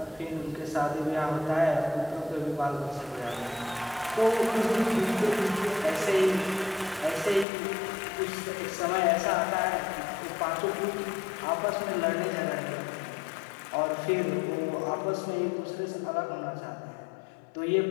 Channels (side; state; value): right; drops out; at 7.5 s